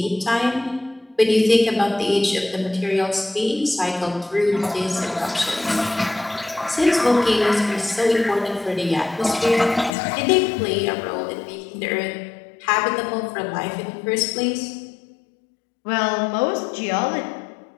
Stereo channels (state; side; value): drops out; right; at 9.9 s